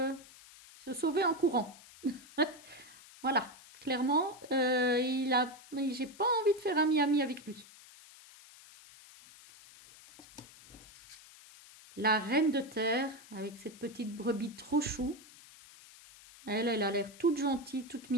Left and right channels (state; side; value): noise; left; hiss, 21 dB below the sound